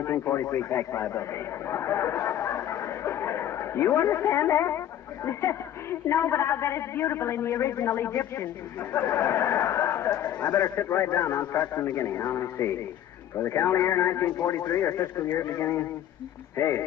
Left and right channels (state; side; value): quieter; right; 11.1 dB